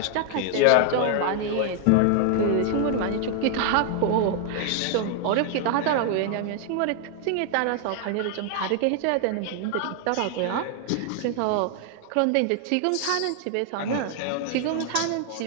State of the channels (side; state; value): both; different; correlation 0.00